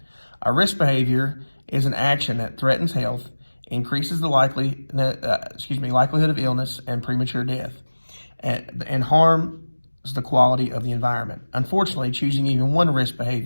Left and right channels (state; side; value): inverted; both; correlation -1.00